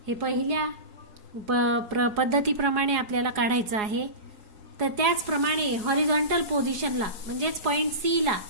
हे पहिल्या पद्धतीप्रमाणे आपल्याला काढायचं आहे. तर त्याचप्रमाणे हॉरिझॉन्टल पोझिशनला, म्हणजेच पॉइंट सी ला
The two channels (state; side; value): late; left; 4.8 ms